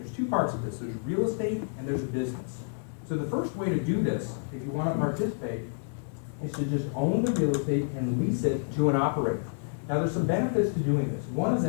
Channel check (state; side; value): silent; right; digital silence